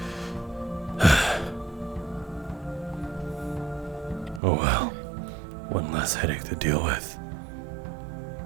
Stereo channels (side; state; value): left; drops out; at 4.4 s